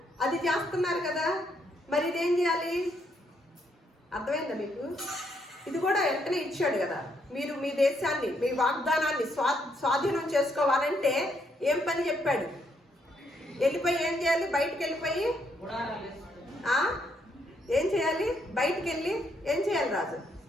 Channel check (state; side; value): normal; both; correlation 0.74